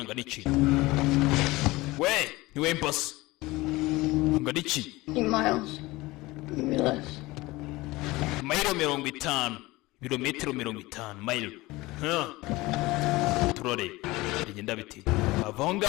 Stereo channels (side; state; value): right; quieter; 20.5 dB